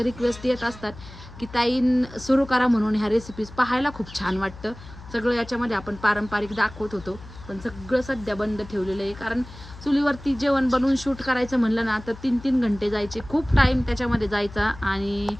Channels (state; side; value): noise; left; hum, 17 dB below the sound